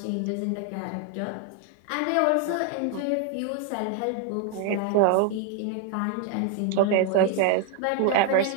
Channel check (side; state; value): both; different; correlation 0.00